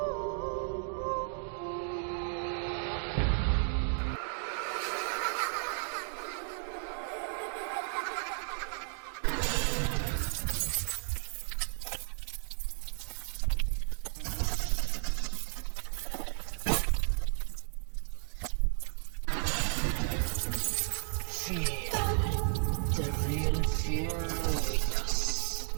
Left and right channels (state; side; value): silent; left; 55 dB below the other